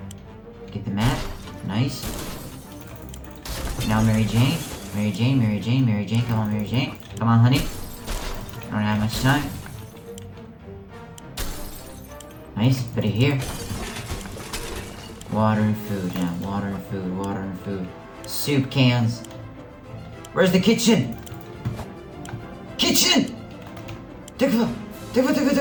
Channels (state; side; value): identical; both; correlation 1.00